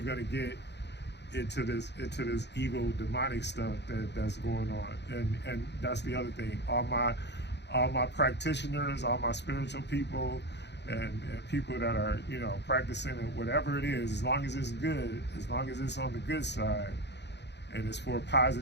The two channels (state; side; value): late; right; 0.50 ms